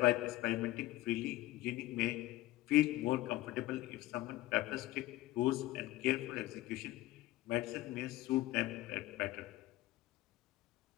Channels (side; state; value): right; quieter; 17.0 dB